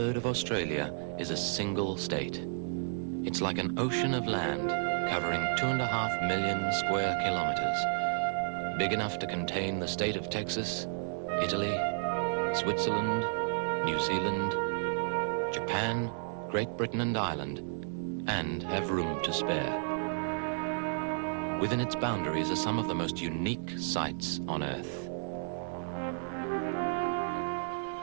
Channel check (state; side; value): silent; left; digital silence